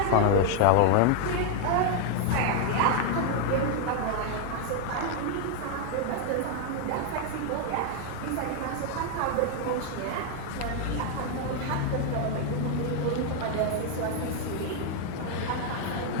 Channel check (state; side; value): different; both; correlation 0.00